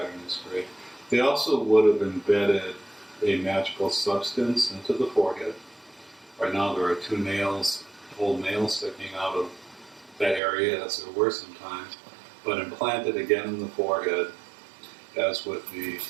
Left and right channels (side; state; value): left; drops out; at 10.4 s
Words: is great. They also would have embedded a magical substance into the forehead. Right now there are two nails, old nails sticking out of that area, as there were sometimes, but implanted again in the forehead, as with the